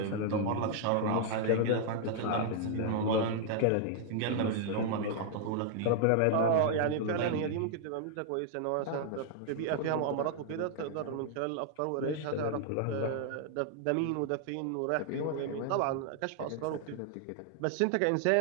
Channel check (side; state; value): both; different; correlation 0.00